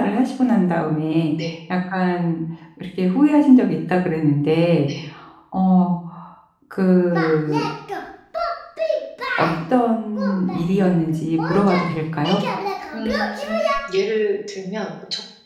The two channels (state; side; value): identical; both; correlation 1.00